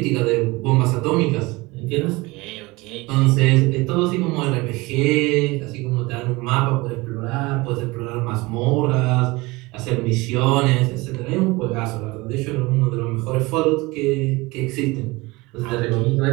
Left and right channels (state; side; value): quieter; left; 22.9 dB